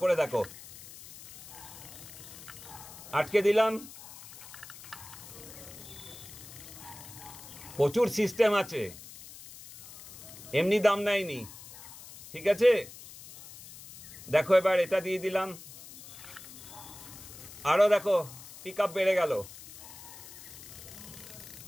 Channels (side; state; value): left; noise; hiss, 16 dB below the sound